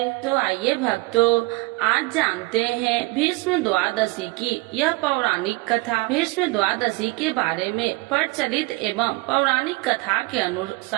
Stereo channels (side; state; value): left; quieter; 23.5 dB